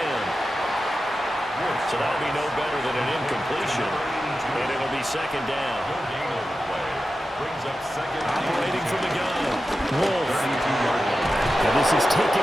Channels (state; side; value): normal; both; correlation 0.92